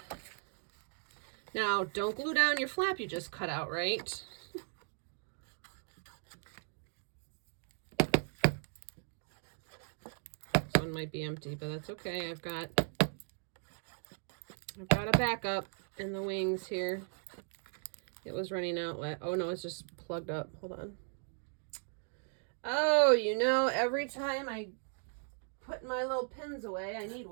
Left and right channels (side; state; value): left; silent; 53 dB below the other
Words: now don't glue down your flap you just cut out, right? One might be empty, but that's okay. I've got a backup in the wings here. It was running out. Oh no, it's just plugged up. Hold on. Oh, every time I put my little pins away, I need